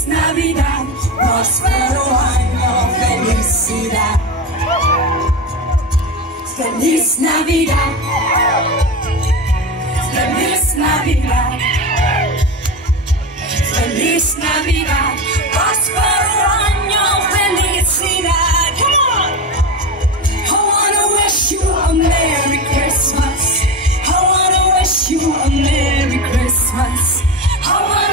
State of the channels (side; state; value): both; normal; correlation 0.22